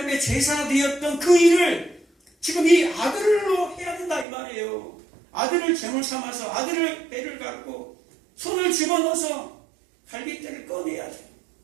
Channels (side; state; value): left; drops out; at 4.2 s